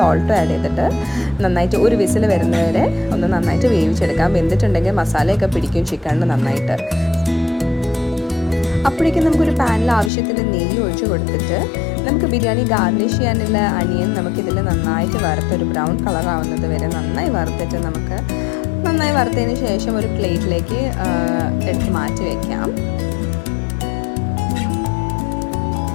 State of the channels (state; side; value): drops out; right; at 10.1 s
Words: ആഡ് ചെയ്തിട്ട് നന്നായിട്ട് ഒരു വിസിൽ വരുന്നവരെ ഒന്ന് നന്നായിട്ട് വേവിച്ചെടുക്കാം. വെന്തിട്ടുണ്ടെങ്കിൽ മസാലയൊക്കെ പിടിക്കും ചിക്കനിന് നന്നായിട്ട്. അപ്പോഴേക്കും നമുക്കൊരു പാനിൽ ആവശ്യത്തിന് നെയ്യ് ഒഴിച്ച് കൊടുത്തിട്ട് നമുക്ക് ബിരിയാണി ഗാർണിഷ് ചെയ്യാനുള്ള അണിയൻ നമുക്കിതിൽ നന്നായിട്ട് വറുത്തൊരു ബ്രൗൺ കളർ ആവുന്നത് വരെ നന്നായി വറുത്തിട്ട് നമുക്ക് നന്നായി വറുത്തതിന് ശേഷം ഒരു പ്ലേറ്റിലേക്ക് എടുത്ത് മാറ്റി വയ്ക്കാം.